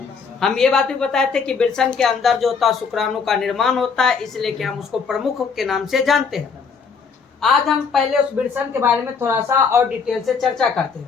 हम ये बात भी बताए थे कि वृषण के अंदर जो होता है शुक्राणु का निर्माण होता है, इसलिए कि हम उसको प्रमुख के नाम से जानते हैं। आज हम पहले उस वृषण के बारे में थोड़ा सा और डिटेल से चर्चा करते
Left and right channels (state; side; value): quieter; right; 5.5 dB